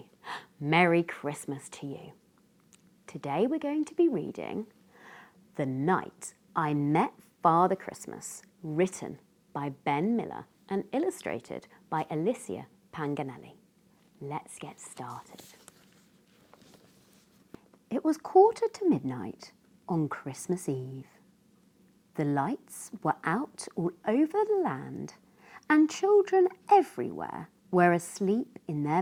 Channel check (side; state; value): both; identical; correlation 1.00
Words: Merry Christmas to you. Today we're going to be reading The Night I Met Father Christmas, written by Ben Miller and illustrated by Alicia Panganelli. Let's get started. It was 1:45 on Christmas Eve. The lights were out all over the land, and children everywhere were asleep in